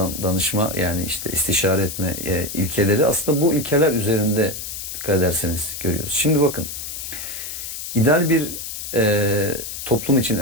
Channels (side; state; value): left; noise; hiss, 7 dB below the sound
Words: danışma, yani işte istişare etme ilkeleri, aslında bu ilkeler üzerinde dikkat ederseniz görüyoruz. Şimdi bakın, ideal bir toplum için,